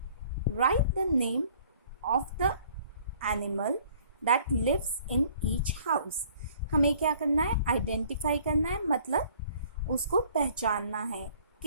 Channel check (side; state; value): both; inverted; correlation -0.57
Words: Write the name of the animal that lives in each house. हमें क्या करना है? Identify करना है, मतलब उसको पहचानना है.